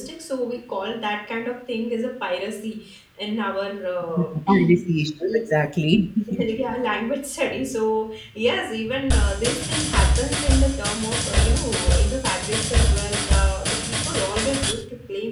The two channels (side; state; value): both; identical; correlation 1.00